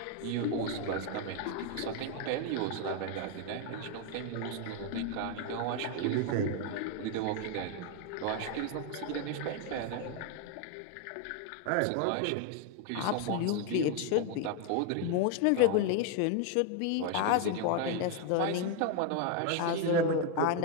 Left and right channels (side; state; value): both; different; correlation 0.01